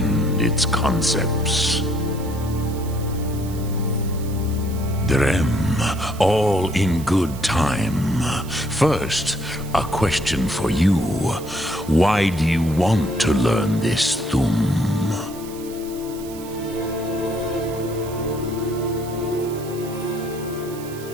its concepts. Drem, all in good time. First, a question for you. Why do you want to learn this Thum?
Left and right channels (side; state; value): right; noise; hiss, 17 dB below the sound